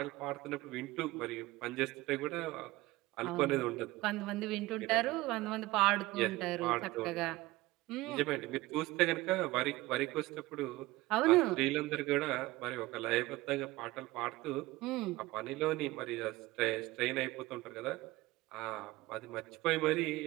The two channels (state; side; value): quieter; left; 19.2 dB